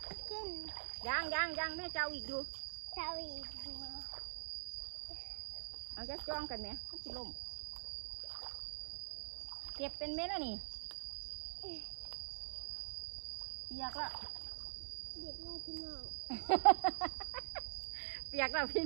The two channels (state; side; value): silent; left; digital silence